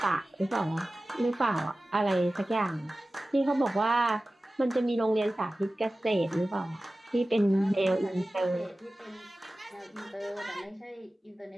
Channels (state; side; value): normal; both; correlation 0.96